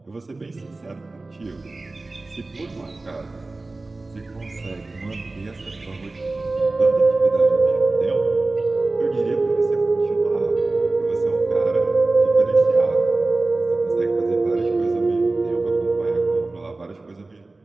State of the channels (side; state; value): left; quieter; 3.2 dB